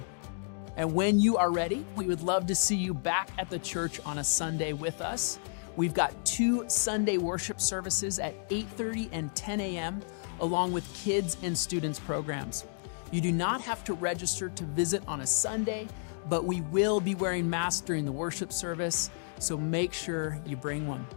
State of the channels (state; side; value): silent; right; digital silence